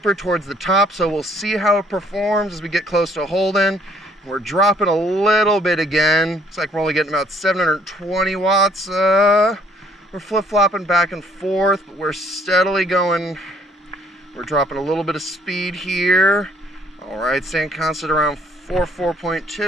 towards the top, so we'll see how it performs as we get close to Holden. We're dropping a little bit again. Looks like we're only getting about 720 watts. We're flip-flopping back and forth, but we're steadily going. We're dropping a little bit of speed here. All right, staying constant around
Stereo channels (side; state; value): both; normal; correlation 0.62